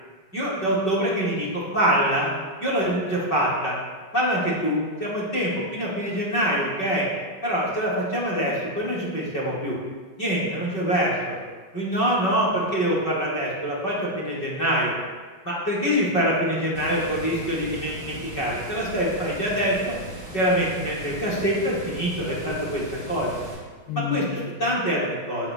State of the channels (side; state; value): right; late; 5.3 ms